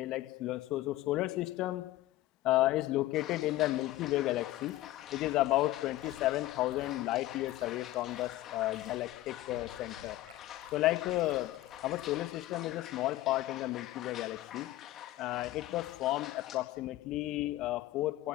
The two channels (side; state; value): right; quieter; 16.1 dB